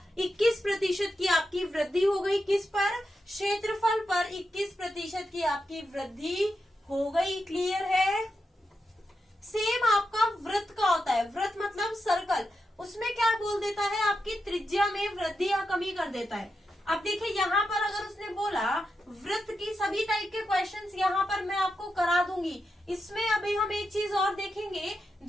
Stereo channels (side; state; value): both; normal; correlation 0.87